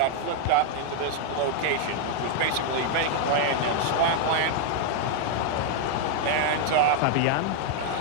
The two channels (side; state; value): both; different; correlation 0.00